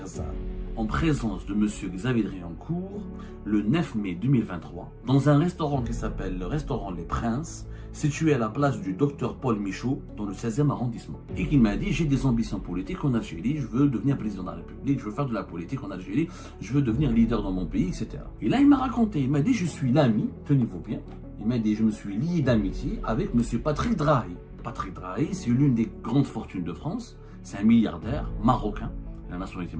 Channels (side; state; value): both; identical; correlation 1.00